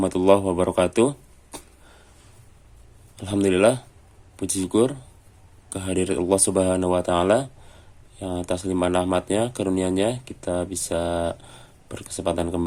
wabarakatuh. Alhamdulillah, puji syukur kehadirat Allah Subhanahu wa Ta'ala yang atas limpahan rahmatnya, karunia-Nya kita bisa berkesempatan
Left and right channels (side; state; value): both; identical; correlation 1.00